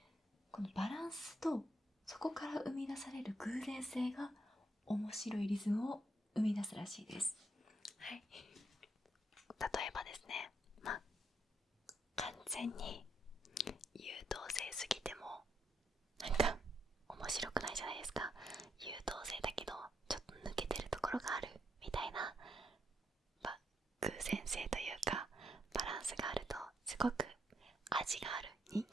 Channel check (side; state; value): both; normal; correlation 0.78